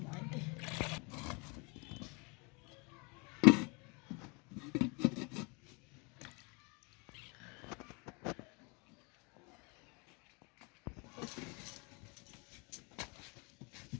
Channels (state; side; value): quieter; right; 30.8 dB